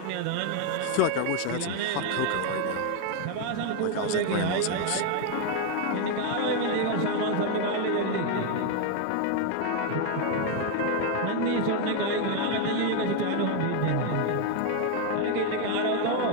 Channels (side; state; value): both; different; correlation 0.01